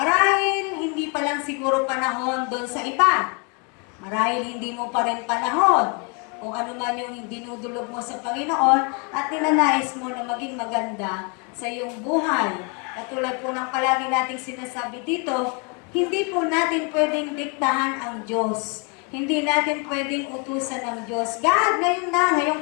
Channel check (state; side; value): quieter; right; 34.3 dB